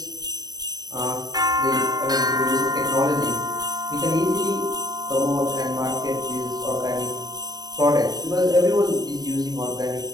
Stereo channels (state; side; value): late; left; 0.19 ms